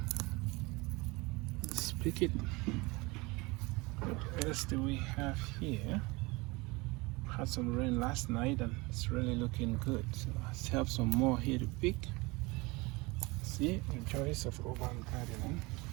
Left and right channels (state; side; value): quieter; left; 24.5 dB